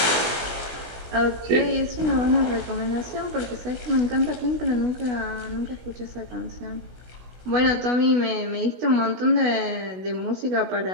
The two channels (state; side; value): late; left; 16 ms